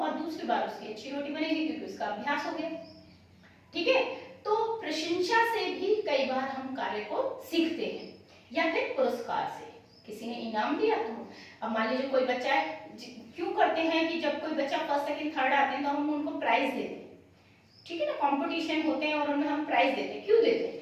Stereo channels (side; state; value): both; identical; correlation 1.00